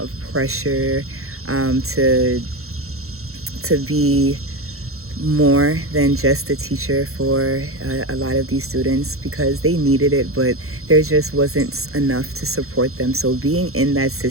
of pressure to be more than just a teacher for a lot of these students, because they needed it, but there just wasn't enough to support them. So being in that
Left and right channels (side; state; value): left; late; 0.63 ms